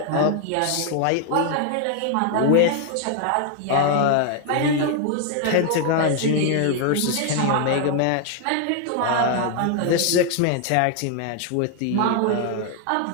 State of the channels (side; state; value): both; different; correlation 0.00